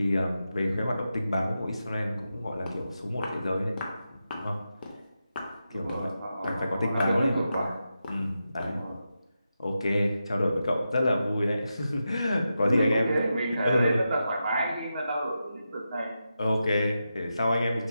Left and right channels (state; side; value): inverted; both; correlation -0.89